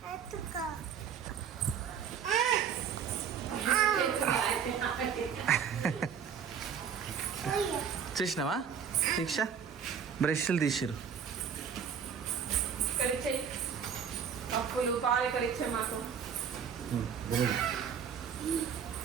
చూసినావా దీక్ష? బ్రష్లు తీసిరు. అప్పులు పాలు ఇక్కడ ఇచ్చే మాకు.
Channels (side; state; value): left; quieter; 7.4 dB